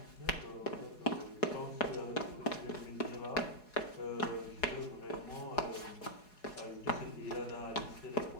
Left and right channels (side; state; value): right; late; 4.8 ms